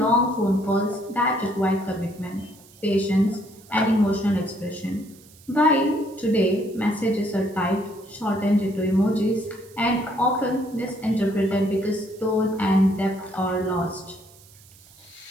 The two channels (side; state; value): right; noise; hiss, 25 dB below the sound